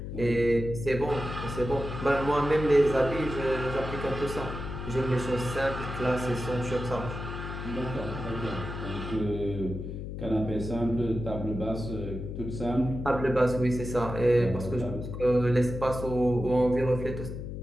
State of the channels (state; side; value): noise; left; hum, 7 dB below the sound